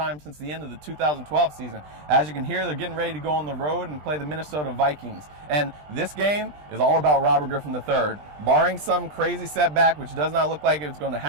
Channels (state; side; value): late; left; 20 ms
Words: since the end of the 2012 season. As you can hear, they're getting ready to go on the road and play the Minnesota Vikings. And this game is all about Robert Griffin III. Barring some crazy setback, which does not look like it's going to